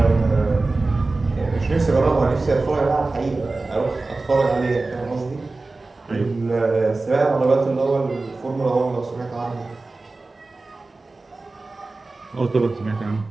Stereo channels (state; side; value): quieter; left; 3.4 dB